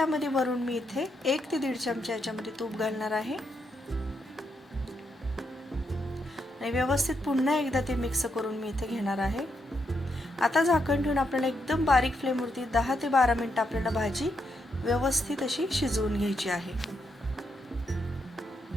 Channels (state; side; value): normal; both; correlation 0.80